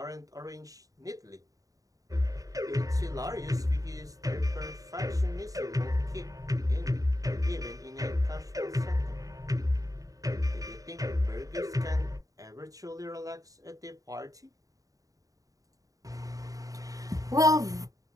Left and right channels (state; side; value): late; left; 0.17 ms